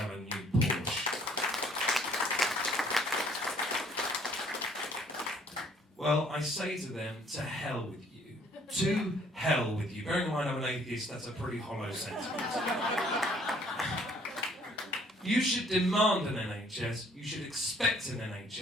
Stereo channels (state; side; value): normal; both; correlation 0.61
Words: a new Porsche. Well, I say to them, to hell with you. To hell with you. Bearing in mind I'm an atheist, that's a pretty hollow sentiment. You should demand an NHS, you should expect an